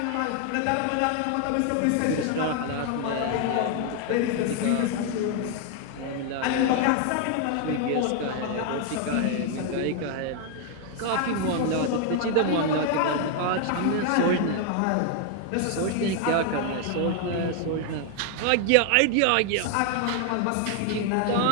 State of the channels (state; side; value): different; both; correlation 0.00